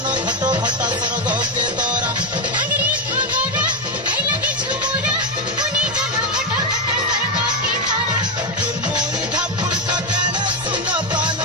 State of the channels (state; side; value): normal; both; correlation 0.08